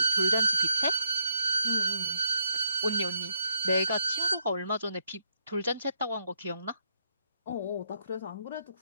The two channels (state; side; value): inverted; both; correlation -0.76